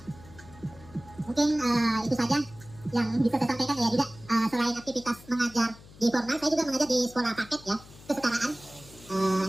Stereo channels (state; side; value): noise; left; hum, 21 dB below the sound